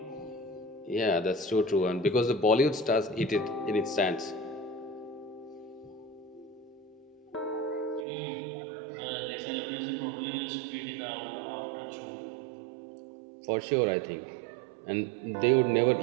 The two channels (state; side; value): drops out; left; at 8.1 s